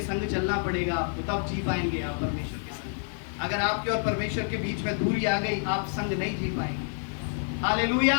संग चलना पड़ेगा आपको, तब जी पाएंगे आप परमेश्वर के संग। अगर आपके और परमेश्वर के बीच में दूरी आ गई, आप संग नहीं जी पाएंगे। हालेलुया।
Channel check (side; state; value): right; silent; 59 dB below the other